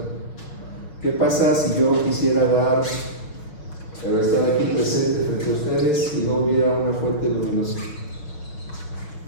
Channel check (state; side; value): late; right; 6.2 ms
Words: ¿Qué pasa si yo quisiera estar aquí presente frente a ustedes y no hubiera una fuente luminosa?